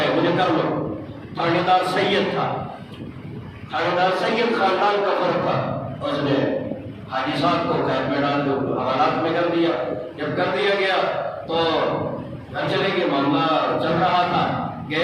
مجھے کر لو۔ تھانے دار سید تھا، تھانے دار سید خاندان کا فرق تھا، اس نے حاجی صاحب کو قید میں ڈال دو، حوالات میں کر دیا۔ جب کر دیا گیا تو گھر چلے گئے، معاملہ چل رہا تھا،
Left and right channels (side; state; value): both; identical; correlation 1.00